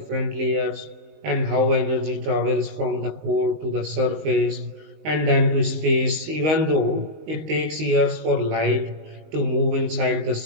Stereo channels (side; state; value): left; late; 19 ms